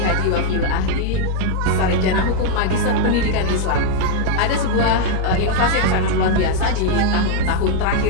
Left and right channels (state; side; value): different; both; correlation 0.00